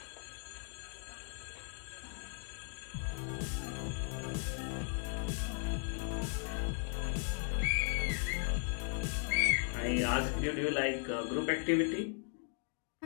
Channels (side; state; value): right; silent; 53 dB below the other